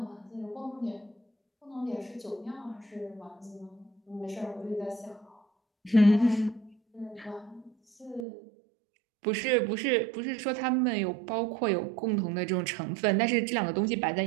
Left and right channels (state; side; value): drops out; left; at 8.2 s